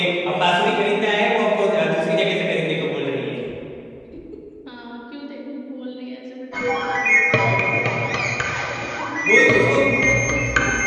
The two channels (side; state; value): both; identical; correlation 1.00